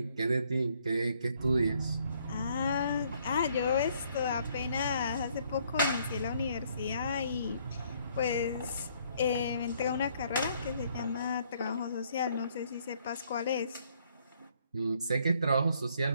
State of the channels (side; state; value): both; inverted; correlation -0.66